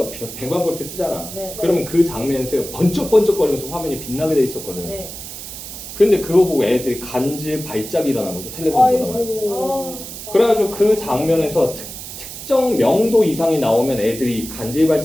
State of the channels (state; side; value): noise; right; hiss, 11 dB below the sound